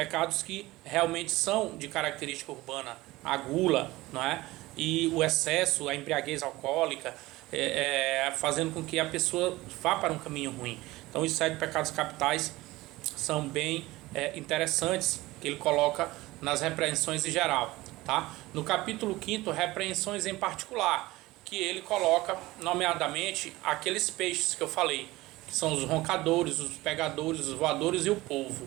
que realmente são de característica urbana, a gula, não é? E o excesso, a embriaguez alcoólica, fazendo com que a pessoa vá para um caminho ruim. Então os 7 pecados capitais são bem interessantes, que ele coloca nas repreensões em geral, tá? No capítulo 5, repreensões em particular, que ele coloca nomeadamente aqueles peixes que eu falei, que são os roncadores, os pegadores, os voadores e o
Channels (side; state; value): left; quieter; 19.1 dB